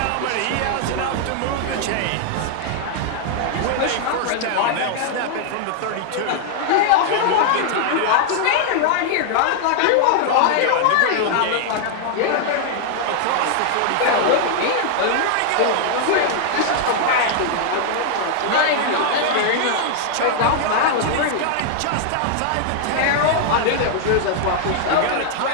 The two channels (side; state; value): both; different; correlation -0.01